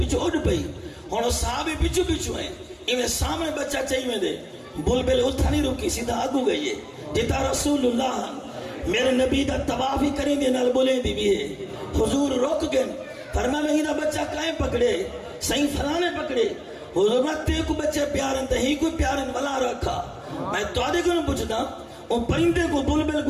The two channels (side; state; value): both; identical; correlation 1.00